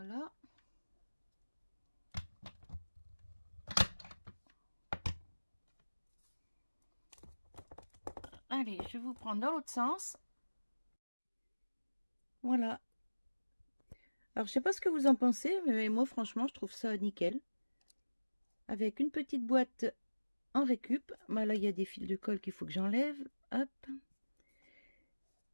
Allez, je vous prends dans l'autre sens. Voilà. Alors, je sais pas ce que vous en pensez, mais moi, franchement, je trouve ça nickel. Avec une petite boîte en récup. Bah, là, il y a des fils de colle qu'il faut que j'enlève. Hop.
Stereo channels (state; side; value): inverted; both; correlation -1.00